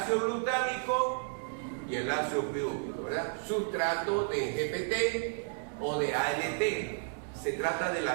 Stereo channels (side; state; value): left; silent; digital silence